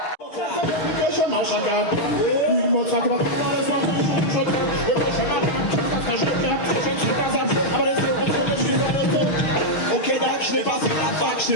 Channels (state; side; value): late; right; 6.5 ms